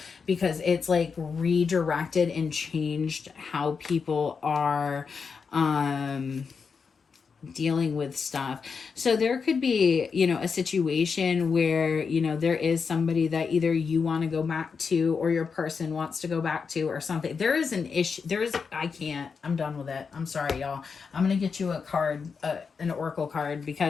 because it's like redirected and changed how people are dealing with stuff. So there could be, you know, a situation where, you know, there is somebody that either you want to go back to or your person wants to go back to or something. There is an issue. I'm done with it. I'm sorry, y'all. I'm going to get you a card, an oracle card,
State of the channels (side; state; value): right; quieter; 5.5 dB